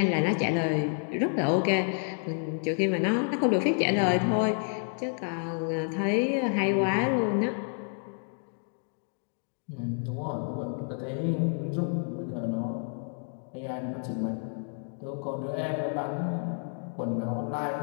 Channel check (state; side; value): silent; right; 58 dB below the other